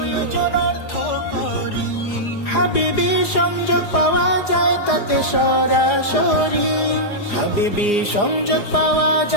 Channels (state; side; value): late; right; 4.9 ms